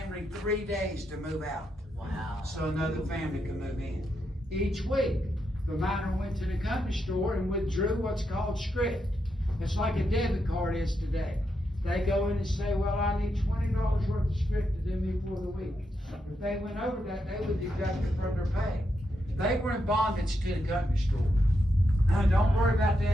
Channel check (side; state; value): both; normal; correlation 0.83